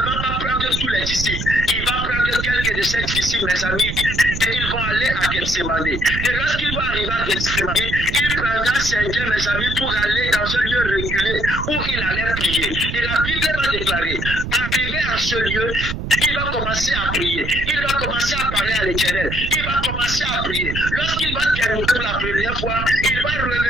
va pas prendre tous les disciples. Il va prendre quelques de ses disciples, mes amis, ils vont aller à Gethsemane. Et lorsqu'ils vont arriver à Gethsemane, il prendra certains, mes amis, pour aller dans un lieu reculé où il allait prier. Et la Bible va déclarer, arrivé à ce lieu, il va commencer à prier. Il va commencer à parler à l'Éternel. Il va commencer à prier. Lorsqu'il va terminer pour la première fois, il va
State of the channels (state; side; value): noise; right; rumble, 6 dB below the sound